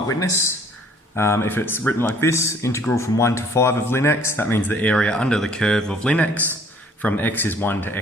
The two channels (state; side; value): normal; both; correlation 0.57